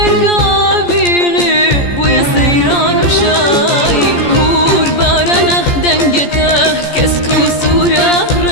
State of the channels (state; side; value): late; right; 14 ms